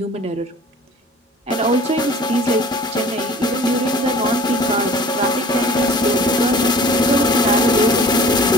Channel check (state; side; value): normal; both; correlation 0.46